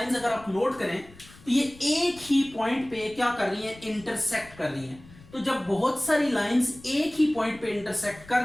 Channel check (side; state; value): left; noise; rumble, 22 dB below the sound